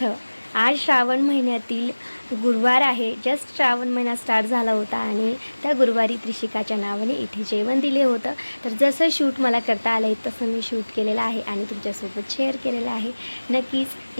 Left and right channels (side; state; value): both; inverted; correlation -1.00